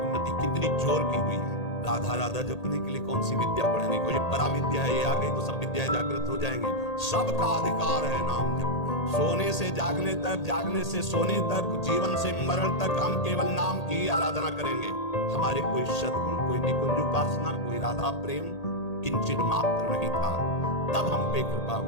कितनी जोर की हुई है। राधा राधा जपने के लिए कौन सी विद्या पढ़ने को, ये पराविद्या है, ये आ गई तो सब विद्याएं जागृत हो जाएंगी। सबका अधिकार है नाम जप। सोने से जागने तक, जागने से सोने तक, जीवन से मरण तक हम केवल नाम की आराधना करेंगे। हमारे कोई सद्गुण, कोई निकुंज उपासना, कोई राधा प्रेम किंचित मात्र नहीं था, तब हम पे कृपा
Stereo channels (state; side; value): late; right; 1.8 ms